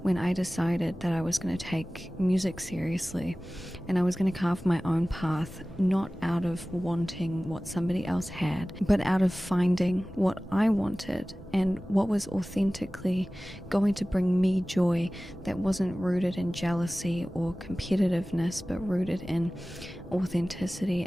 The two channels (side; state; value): both; normal; correlation 0.97